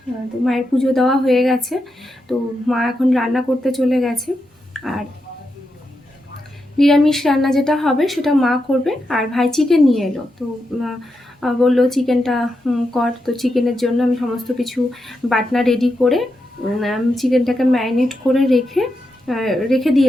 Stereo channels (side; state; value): both; normal; correlation 0.86